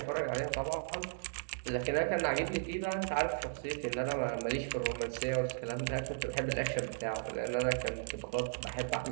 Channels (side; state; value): left; silent; 54 dB below the other